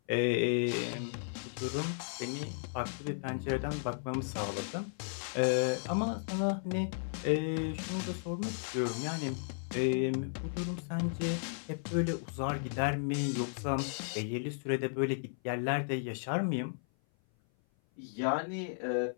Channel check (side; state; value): right; silent; 55 dB below the other